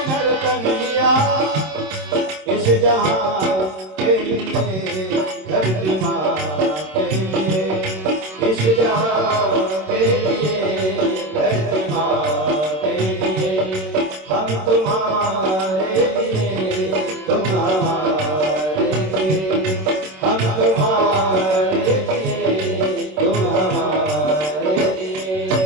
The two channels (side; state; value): left; late; 27 ms